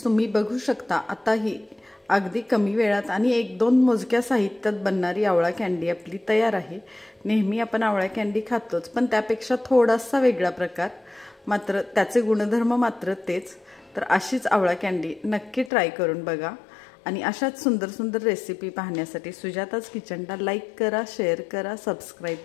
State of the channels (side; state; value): right; drops out; at 15.7 s